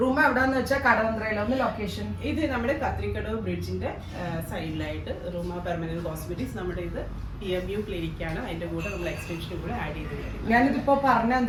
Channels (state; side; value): identical; both; correlation 1.00